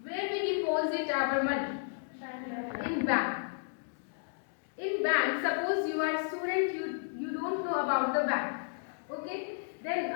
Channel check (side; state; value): right; silent; digital silence